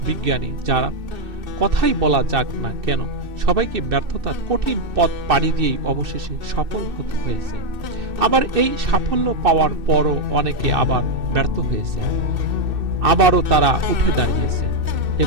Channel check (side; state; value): left; late; 2.6 ms